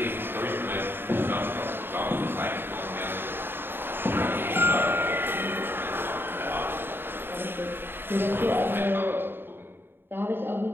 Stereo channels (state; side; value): late; left; 0.10 ms